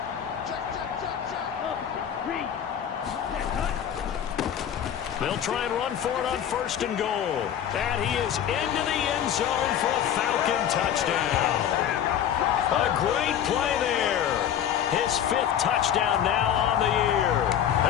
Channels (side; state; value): right; quieter; 9.6 dB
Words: They'll try and run for it on 1st and goal. And he is into the end zone for a Falcon touchdown. A great play there. His 5th touchdown now on the year.